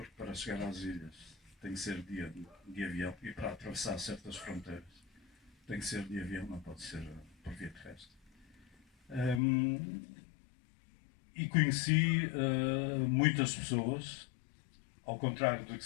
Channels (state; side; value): drops out; right; at 9.4 s